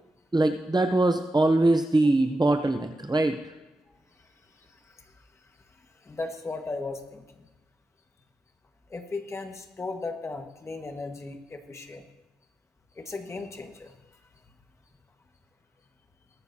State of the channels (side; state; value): both; normal; correlation 0.90